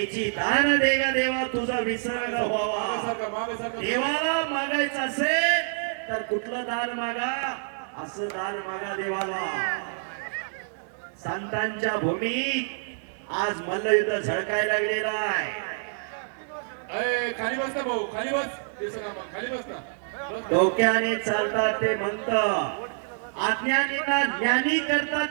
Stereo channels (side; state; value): left; silent; digital silence